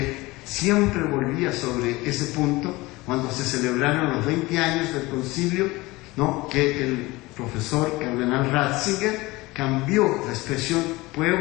siempre volvía sobre ese punto cuando se celebraron los 20 años del concilio, ¿no?, que el profesor cardenal Ratzinger cambió la expresión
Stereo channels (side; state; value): right; quieter; 21.3 dB